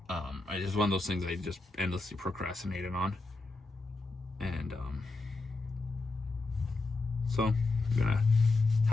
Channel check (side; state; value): right; quieter; 3.3 dB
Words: It's one of those things I just endlessly procrastinated on. And so I'm gonna